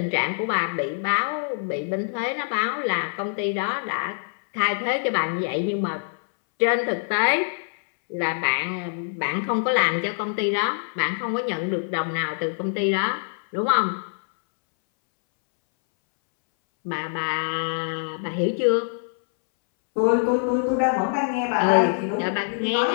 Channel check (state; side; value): silent; right; 62 dB below the other